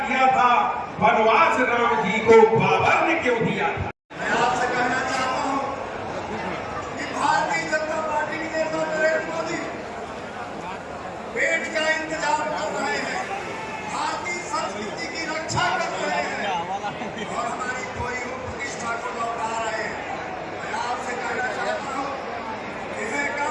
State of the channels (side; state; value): both; identical; correlation 1.00